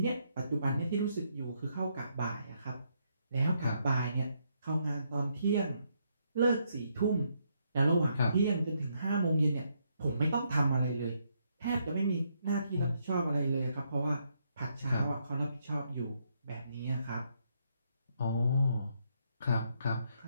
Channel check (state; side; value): inverted; both; correlation -0.76